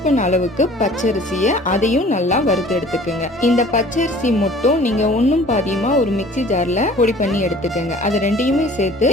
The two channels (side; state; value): both; normal; correlation 0.49